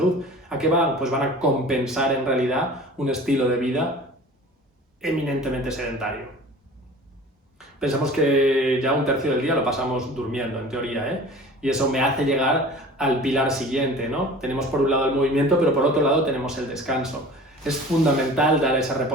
¿a qué van? Pues van a compensar en realidad un estilo de vida eminentemente sedentario. Pensamos que ya 1/3 del día lo pasamos durmiendo, en teoría, y eso me hace llegar al pilar siguiente, ¿no? Tenemos por un lado el movimiento, pero por otro lado tenemos el descanso. Es fundamental dar ese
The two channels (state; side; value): normal; both; correlation 0.42